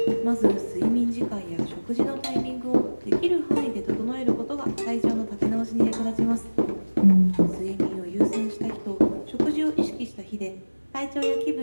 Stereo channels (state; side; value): inverted; both; correlation -1.00